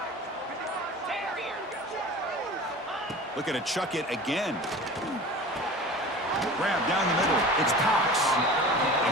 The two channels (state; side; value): normal; both; correlation 0.38